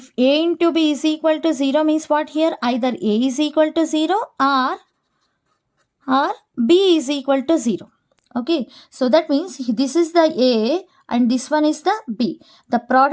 A into B is equal to 0 means what here? Either A is equal to 0 or B is equal to 0. Okay, so that means this is the A and this one is the B. The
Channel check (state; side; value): identical; both; correlation 1.00